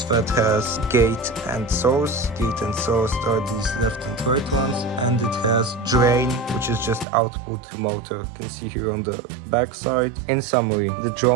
has gate and source. Gate and source are these left and right ones, and it has drain, which is just output to motor. You can see here on the back side. In summary, the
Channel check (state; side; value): drops out; left; at 7.1 s